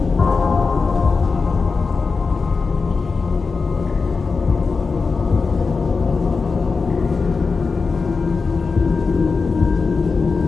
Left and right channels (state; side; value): quieter; right; 4.6 dB